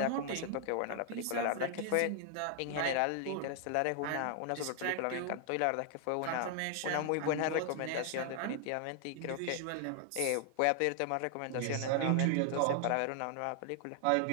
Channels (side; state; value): both; different; correlation 0.00